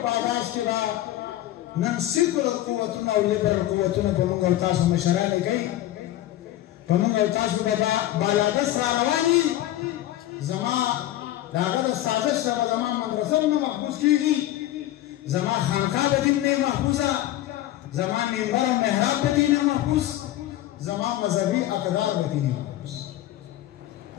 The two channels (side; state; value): right; quieter; 14.2 dB